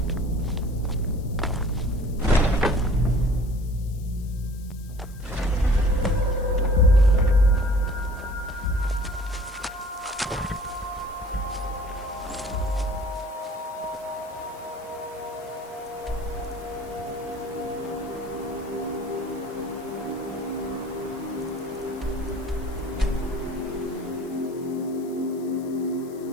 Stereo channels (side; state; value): left; noise; hiss, 23 dB below the sound